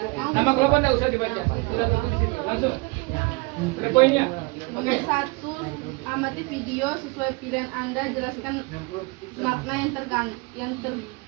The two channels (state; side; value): quieter; left; 27.4 dB